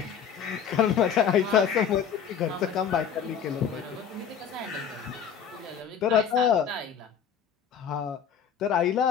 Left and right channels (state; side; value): quieter; right; 7.7 dB